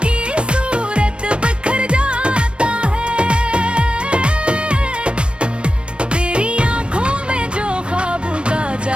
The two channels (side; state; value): left; late; 0.058 ms